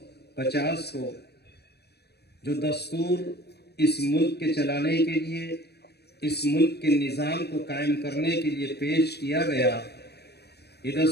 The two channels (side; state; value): right; late; 0.48 ms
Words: کو جو دستور اس ملک کے چلانے کے لیے، اس ملک کے نظام کو قائم کرنے کے لیے پیش کیا گیا، یہ